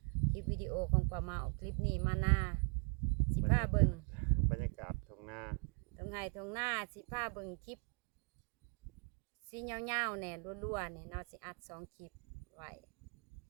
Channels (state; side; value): quieter; left; 36.9 dB